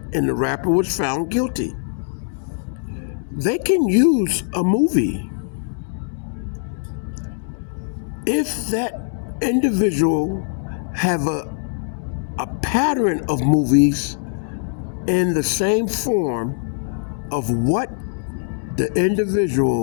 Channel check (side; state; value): right; silent; digital silence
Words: and the rapper was found guilty. They can use a movie if that individual have a pattern of movies in the same form of what the